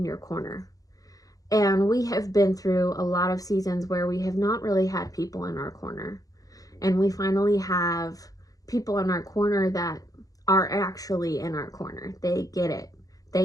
your corner. And we have been through a lot of seasons where we have not really had people in our corner, and we finally have people in our corner that are actually in our corner. They get it,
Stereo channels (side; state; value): right; late; 0.17 ms